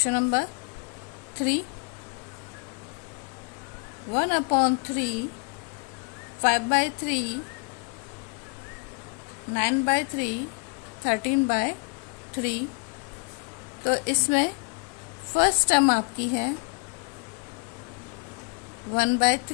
number 3, 1/3, 5/3, 9/3, 13/3। तो इसमें फर्स्ट टर्म आपकी है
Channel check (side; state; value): right; quieter; 33.8 dB